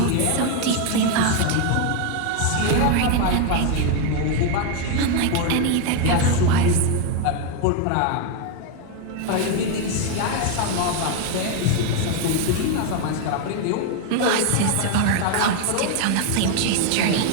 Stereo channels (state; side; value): different; both; correlation 0.01